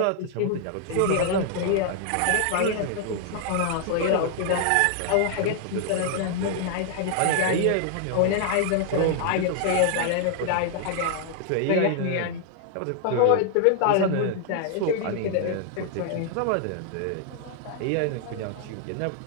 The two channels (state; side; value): different; both; correlation 0.00